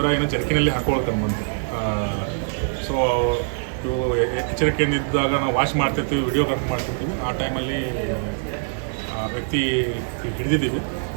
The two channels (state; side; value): silent; left; digital silence